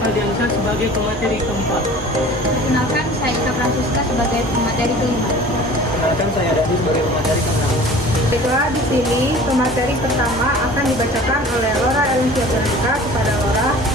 sebagai pemateri keempat. Perkenalkan, saya Ika Francisca sebagai pemateri kelima. Perkenalkan, saya Dadi sebagai pemateri keenam. Baiklah, di sini pemateri pertama akan dibacakan oleh Laura Elencia Veronica. Kepada Laura,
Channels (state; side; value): normal; both; correlation 0.44